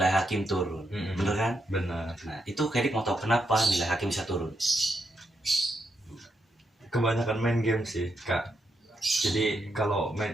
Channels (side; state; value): both; normal; correlation 0.81